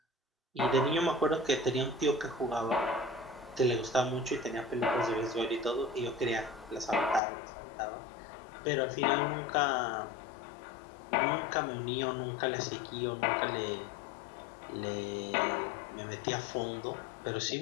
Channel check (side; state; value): right; drops out; at 7.2 s